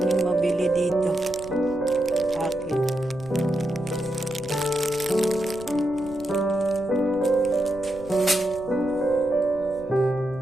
mabili dito. Akin.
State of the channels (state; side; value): noise; left; rumble, 18 dB below the sound